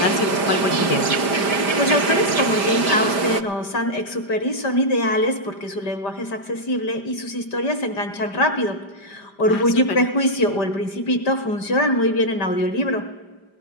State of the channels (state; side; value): late; right; 5.0 ms